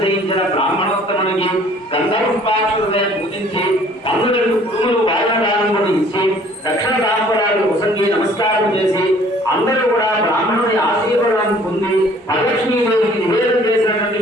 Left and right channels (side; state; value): both; normal; correlation 0.55